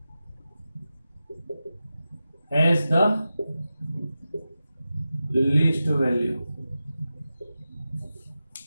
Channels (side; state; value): both; inverted; correlation -0.93